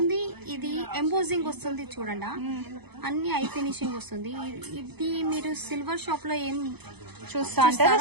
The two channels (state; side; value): late; left; 0.98 ms